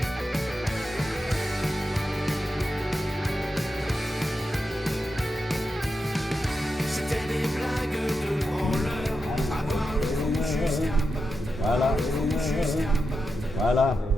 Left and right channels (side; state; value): both; normal; correlation 0.88